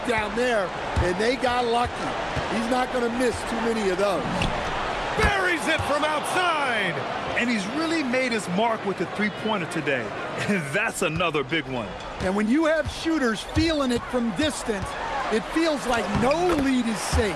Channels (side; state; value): both; identical; correlation 1.00